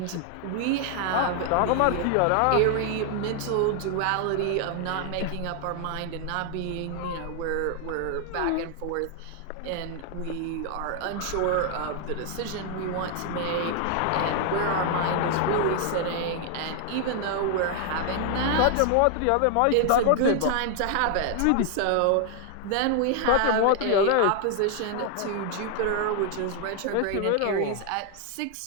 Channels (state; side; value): different; both; correlation 0.00